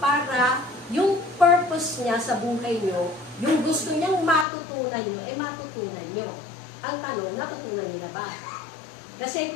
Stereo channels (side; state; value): right; drops out; at 4.5 s